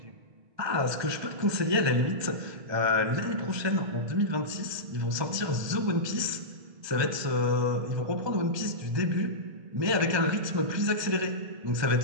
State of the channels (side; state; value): left; late; 1.3 ms